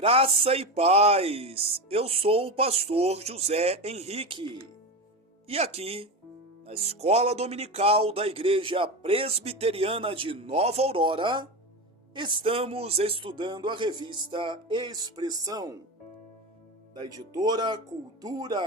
e paz, eu sou o pastor José Henrique e aqui, na Escola Dominical da Igreja Presbiteriana de Nova Aurora, estamos estudando a revista Expressão, da editora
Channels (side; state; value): both; normal; correlation 0.21